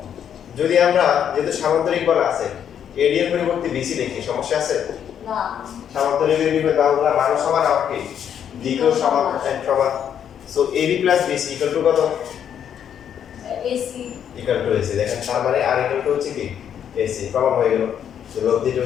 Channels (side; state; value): right; quieter; 8.9 dB